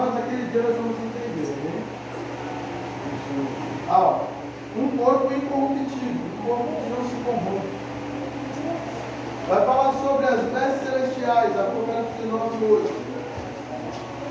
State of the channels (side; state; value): both; identical; correlation 1.00